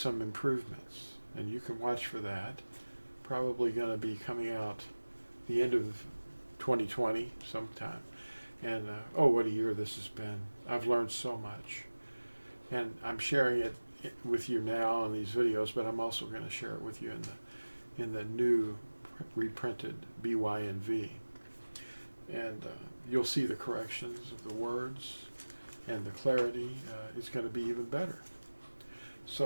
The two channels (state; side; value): inverted; both; correlation -1.00